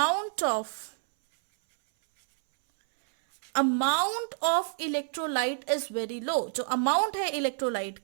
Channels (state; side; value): silent; left; 59 dB below the other